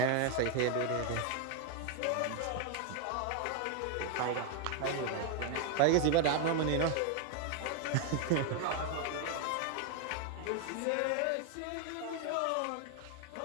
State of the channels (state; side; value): different; both; correlation 0.01